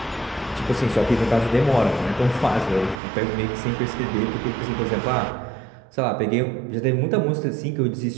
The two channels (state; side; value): drops out; left; at 3.0 s